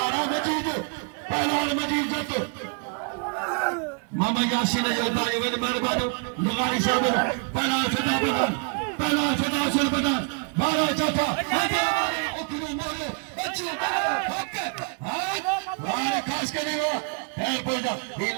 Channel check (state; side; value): quieter; left; 38.4 dB